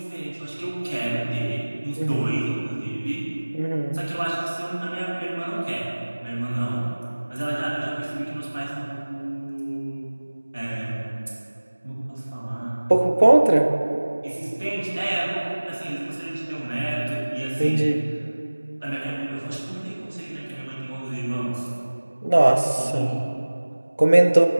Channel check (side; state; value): both; inverted; correlation -1.00